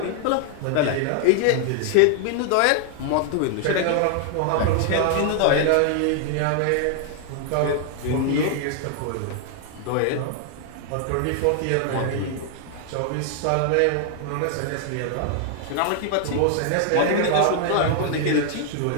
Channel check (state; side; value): different; both; correlation 0.00